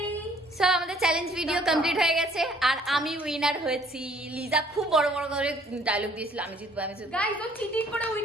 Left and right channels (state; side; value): normal; both; correlation 0.60